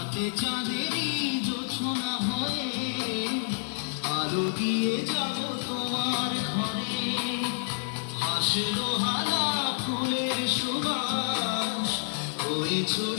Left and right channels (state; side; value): silent; right; digital silence